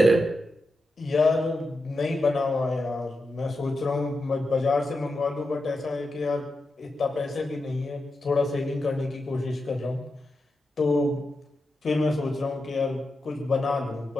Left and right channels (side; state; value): both; normal; correlation 0.89